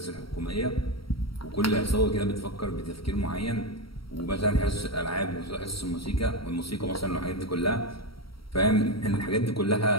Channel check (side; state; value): right; late; 0.75 ms